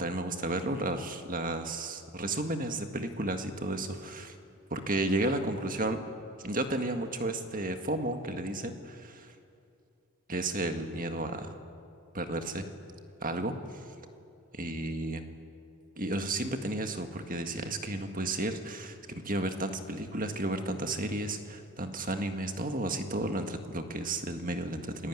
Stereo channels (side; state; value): both; normal; correlation 0.40